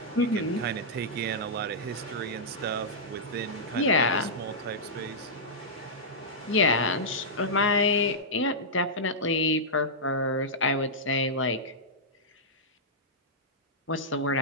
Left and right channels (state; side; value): normal; both; correlation -0.10